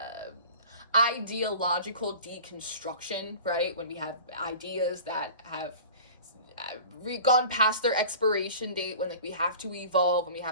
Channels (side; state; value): both; inverted; correlation -0.41